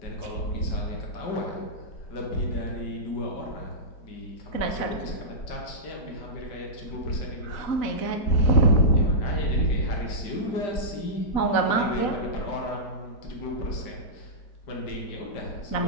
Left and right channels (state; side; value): late; right; 4.0 ms